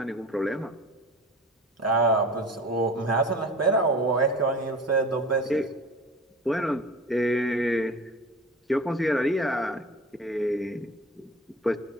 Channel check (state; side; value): normal; both; correlation 0.39